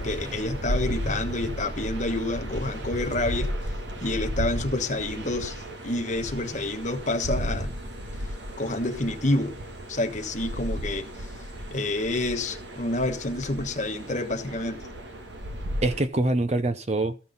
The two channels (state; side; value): normal; both; correlation 0.53